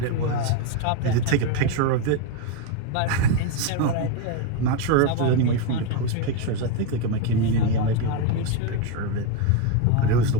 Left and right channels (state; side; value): different; both; correlation 0.02